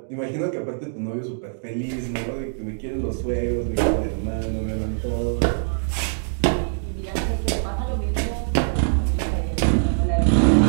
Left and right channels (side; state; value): left; silent; digital silence